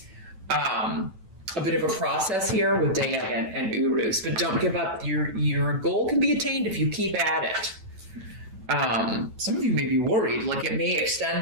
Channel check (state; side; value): late; left; 9.1 ms